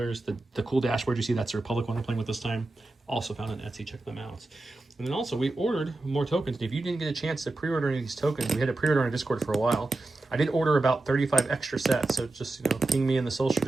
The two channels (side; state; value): left; quieter; 3.0 dB